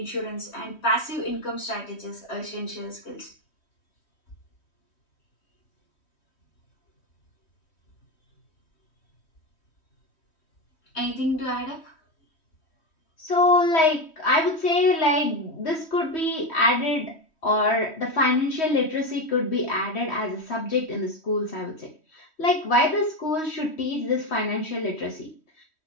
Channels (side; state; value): right; late; 3.1 ms